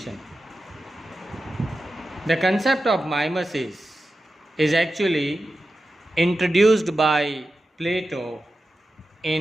The concept of mimesis is actually introduced by Plato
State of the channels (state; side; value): normal; both; correlation 0.92